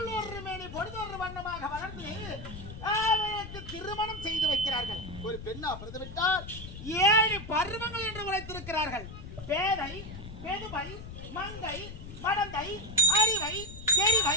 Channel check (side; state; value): left; noise; rumble, 12 dB below the sound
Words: மேனி பொழுதொரு வண்ணமாக வளர்ந்து அவருக்கு திருமணம் செய்து வைக்கிறார்கள். ஒரு பெண்ணா பிறந்து விட்டால் 7 பருவங்கள் என்று உரைத்திருக்கிறார்கள். பேதை, பெதுமை, மங்கை, மடந்தை, அறிவை,